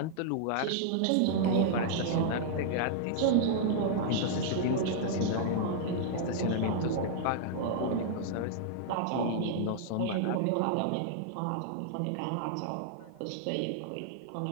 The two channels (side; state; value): both; different; correlation -0.01